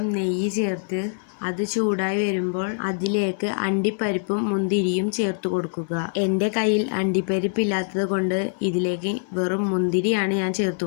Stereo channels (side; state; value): right; silent; 60 dB below the other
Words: നെയ്യ് ചേർത്ത് അത് ചൂടായി വരുമ്പോൾ അതിലേക്ക് അണ്ടിപ്പരിപ്പും മുന്തിരിയും ചേർത്ത് കൊടുക്കുക. എൻ്റെ കയ്യിൽ അണ്ടിപ്പരിപ്പ് ഇല്ലാത്തത് കൊണ്ട് ഇതിലേക്ക് വെറും മുന്തിരിയാണ് ഞാൻ ചേർത്ത്